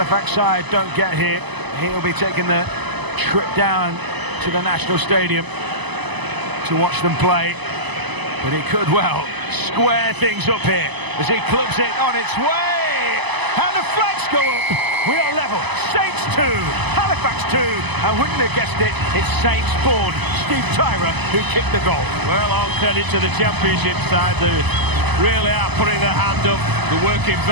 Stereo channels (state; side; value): late; left; 1.0 ms